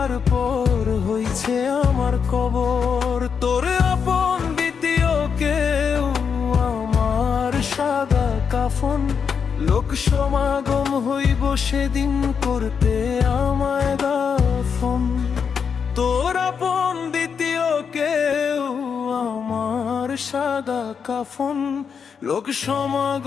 হইছে আমার কবর। তোর আপন দ্বিতীয় কেউ আমার সাদা কাফন, লোক সমাগম হইব সেদিন করতে আমায় দাফন। তোর আপন দ্বিতীয় কেউ আমার সাদা কাফন, লোক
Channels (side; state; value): right; quieter; 6.5 dB